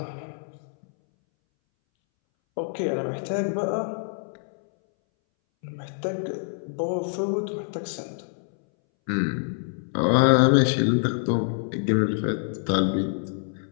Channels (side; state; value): right; silent; 61 dB below the other